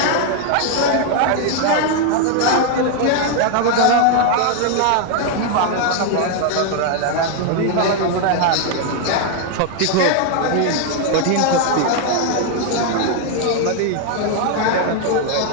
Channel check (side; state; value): both; different; correlation 0.00